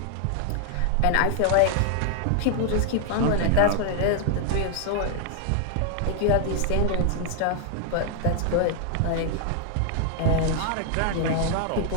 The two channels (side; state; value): both; different; correlation 0.00